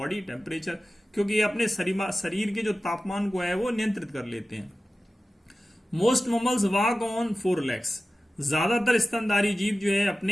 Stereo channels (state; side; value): normal; both; correlation 0.95